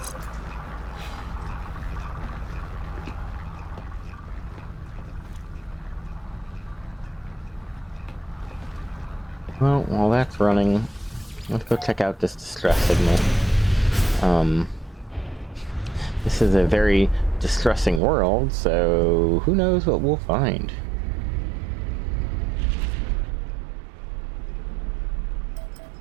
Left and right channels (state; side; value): drops out; left; at 18.0 s